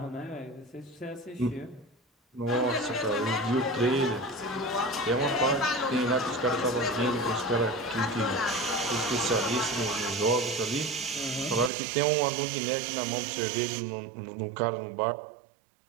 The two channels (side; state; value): left; drops out; at 11.7 s